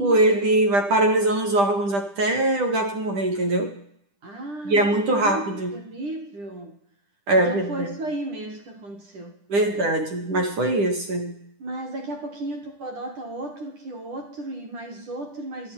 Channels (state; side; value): late; left; 10 ms